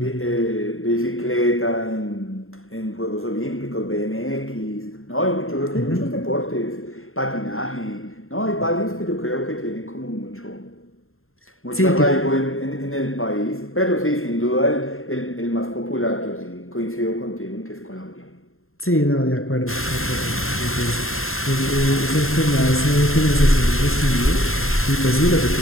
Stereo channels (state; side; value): late; right; 0.61 ms